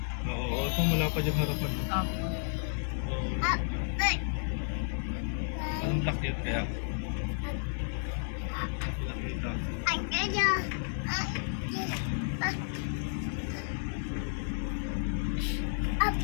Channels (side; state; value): right; silent; digital silence